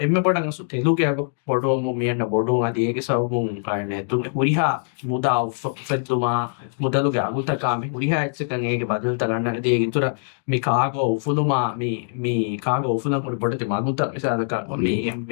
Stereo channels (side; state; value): right; silent; digital silence